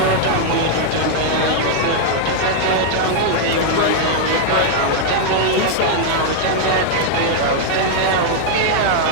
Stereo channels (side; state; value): both; different; correlation 0.00